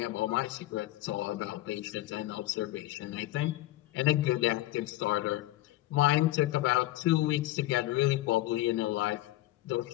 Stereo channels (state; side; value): quieter; right; 16.1 dB